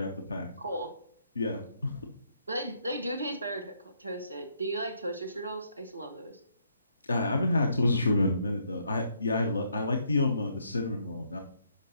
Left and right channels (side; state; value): both; inverted; correlation -0.72